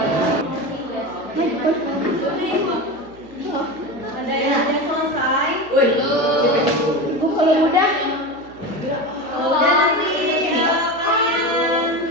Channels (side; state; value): right; noise; hum, 24 dB below the sound